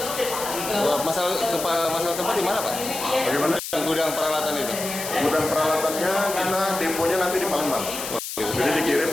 Masalah tempat di mana, Pak? Bagaimana? Gudang peralatan itu? Gudang peralatannya kita deponya nanti di Palembang. Jadi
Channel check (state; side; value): noise; left; hiss, 7 dB below the sound